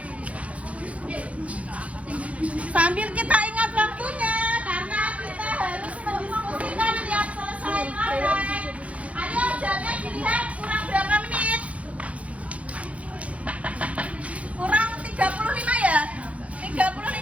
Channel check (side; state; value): left; late; 0.065 ms